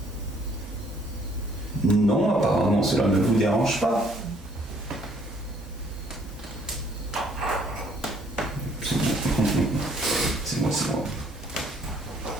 Non, apparemment cela ne vous dérange pas. C'est moi, c'est moi.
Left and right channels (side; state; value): both; normal; correlation 0.63